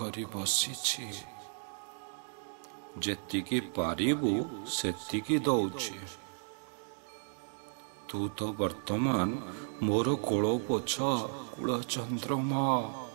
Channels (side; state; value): left; silent; digital silence